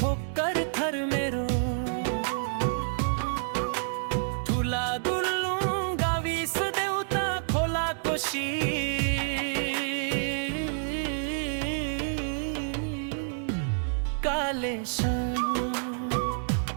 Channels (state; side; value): silent; left; 58 dB below the other